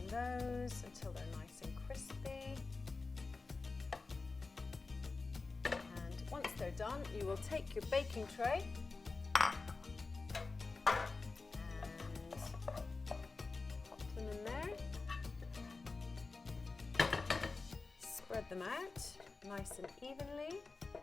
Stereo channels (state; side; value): quieter; right; 3.9 dB